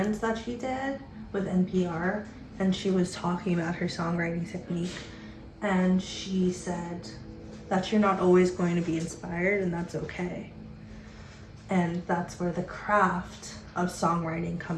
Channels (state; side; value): identical; both; correlation 1.00